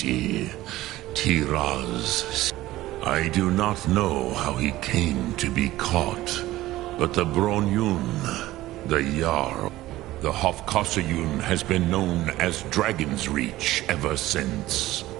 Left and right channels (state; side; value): quieter; left; 16.4 dB